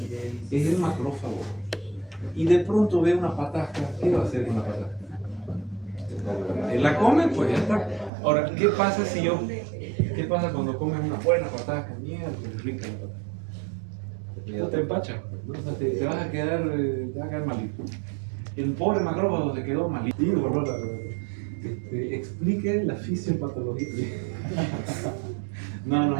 Es el macrófago. Y de pronto ve una patasca, ¿qué va a hacer con la patasca? La come, pues ya está. Ahora, ¿qué pasa qué pasa cuando comes una buena patasca? Mierda, qué rica la patasca. No te empachas, ¿no? O sea, te vas a quedar malito. El pobre macrófago se quedó malito. Explique la fisiopatología.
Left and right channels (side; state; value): left; drops out; at 8.1 s